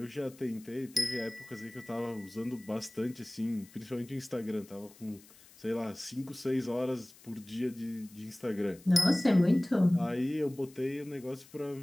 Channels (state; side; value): noise; left; hiss, 23 dB below the sound